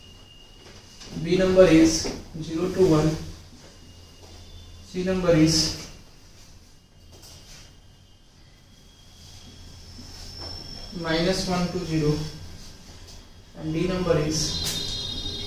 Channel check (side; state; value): both; identical; correlation 1.00